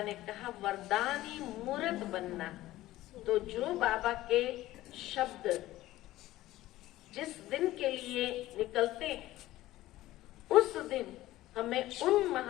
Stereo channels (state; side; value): quieter; right; 16.0 dB